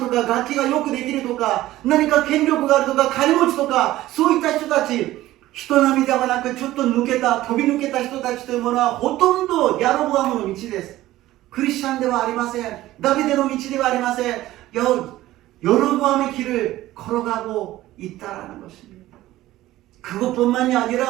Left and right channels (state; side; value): quieter; left; 15.7 dB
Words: か楽器がよくできるとか何か権力があるとか金持ちとかそういった人たち、人並みではなくちょっと抜けた飛び抜けた人たちというものはほとんどヤロボアムの道です。クリスチャンではありません。ダビデの道ではありません。여로보암의 길을 걸어가고 있다라는 것입니다. 그것뿐만이